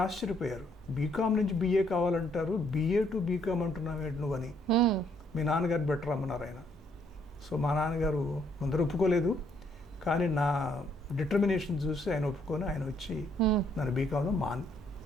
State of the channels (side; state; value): both; normal; correlation 0.69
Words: ఆశ్చర్యపోయారు, బీకామ్ నుంచి బిఏ కావాలంటారు, బిఏ టు బీకామ్ అంటున్నావు నువ్వని. మీ నాన్నగారు బెటర్ అమ్మన్నారు ఆయన. సో మా నాన్నగారు ముందర ఒప్పుకోలేదు, కానీ నా డిటర్మినేషన్ చూసి ఆయన ఒప్పుకొని ఆయన వచ్చి నన్ను బీకామ్లో